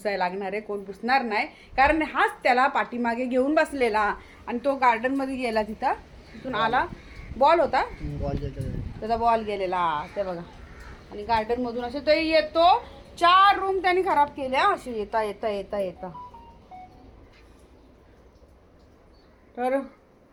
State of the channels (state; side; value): identical; both; correlation 1.00